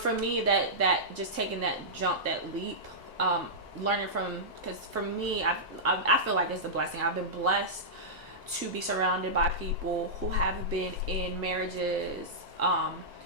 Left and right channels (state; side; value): normal; both; correlation -0.13